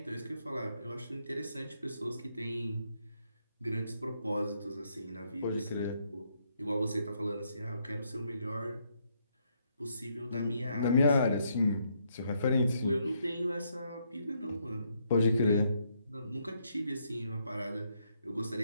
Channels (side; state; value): both; inverted; correlation -0.75